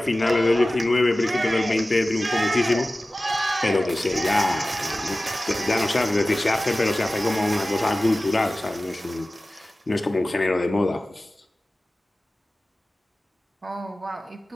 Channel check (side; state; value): both; normal; correlation 0.96